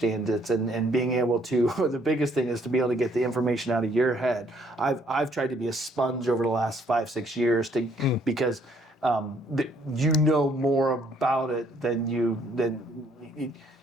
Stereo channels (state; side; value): normal; both; correlation 0.65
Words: it, and being able to, the biggest thing is to be able to get the information out of your head. I've tried to be a sponge over the last 5-6 years because you know more about it than you've